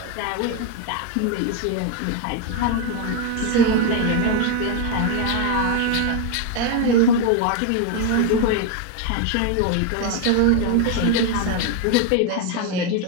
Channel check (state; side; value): different; both; correlation 0.02